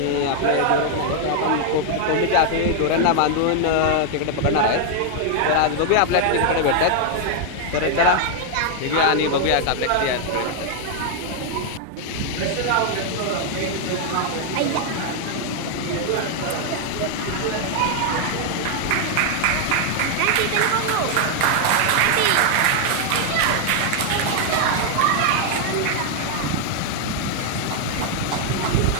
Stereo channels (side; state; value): both; different; correlation 0.00